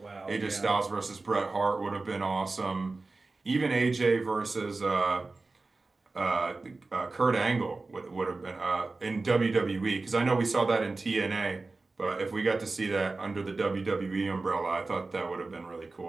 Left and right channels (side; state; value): left; quieter; 3.5 dB